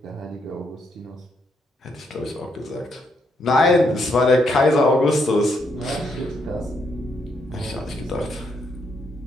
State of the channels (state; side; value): normal; both; correlation 0.76